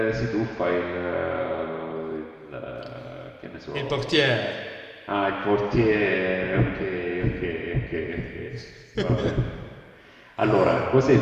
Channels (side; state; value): both; identical; correlation 1.00